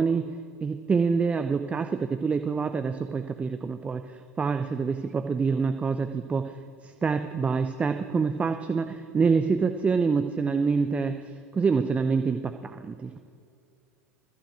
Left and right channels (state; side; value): quieter; left; 4.8 dB